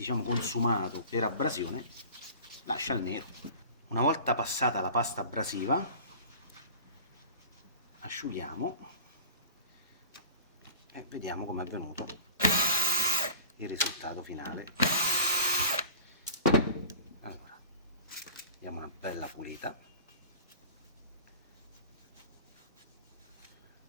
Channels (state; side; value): inverted; both; correlation -0.41